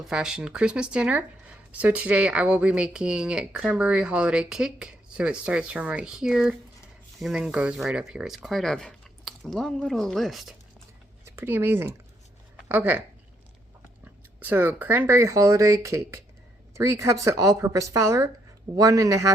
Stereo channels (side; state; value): both; normal; correlation 0.74